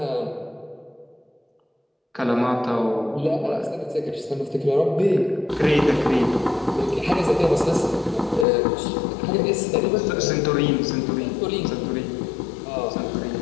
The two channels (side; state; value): right; drops out; at 8.5 s